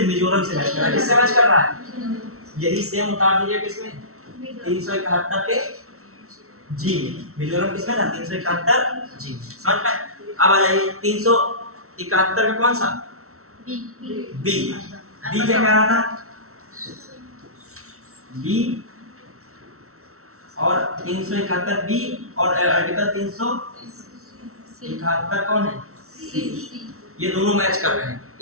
मिजोरम से मैच कर रहा है। किससे मैच कर रहा है? यही सेम उतार दीजिए किसमें? 371 के जी। मिजोरम किसमें था? 371 जी। समझ में? अब आ जाइए 371 का कौन सा? बी क्या कह रहा था? बी और 371 बी और आर्टिकल 371 कौन है? सी। ये दोनों मैच कर रहे हैं,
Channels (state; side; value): late; left; 0.63 ms